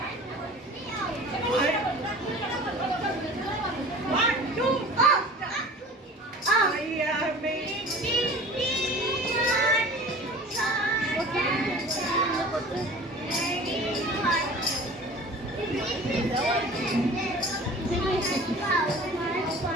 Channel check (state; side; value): normal; both; correlation 0.42